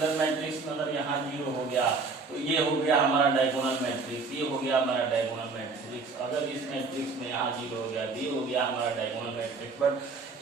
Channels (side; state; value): left; quieter; 4.3 dB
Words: मैट्रिक्स में अगर यहाँ 0 हो गया तो ये हो गया हमारा डायगोनल मैट्रिक्स, ये हो गया हमारा डायगोनल मैट्रिक्स। अगर इस मैट्रिक्स में यहाँ 0 हो गया तो ये हो गया हमारा डायगोनल मैट्रिक्स। बट